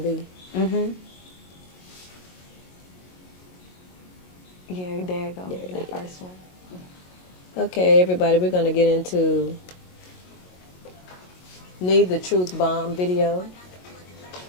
Mm-hmm. Yeah, there you go. There it That is. first one. Okay, everybody, we're going to get into Need the Truth Bomb video.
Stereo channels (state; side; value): late; right; 22 ms